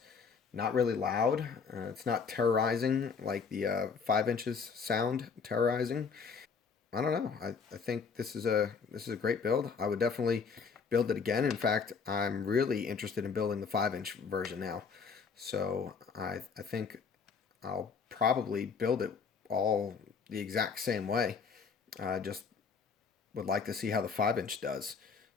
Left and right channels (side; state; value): right; quieter; 5.6 dB